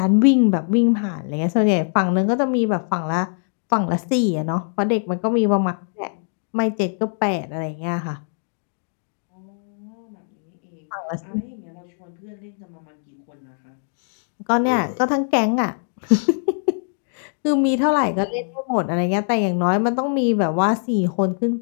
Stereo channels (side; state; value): right; silent; 63 dB below the other